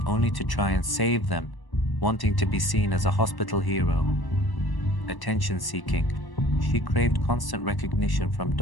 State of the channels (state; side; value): late; right; 1.1 ms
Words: only to try and save them, wanting to be seen as a hospital hero. Attention seeking: she craved constant recognition from